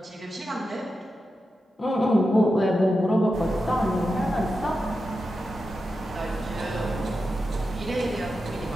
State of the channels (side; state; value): both; normal; correlation 0.90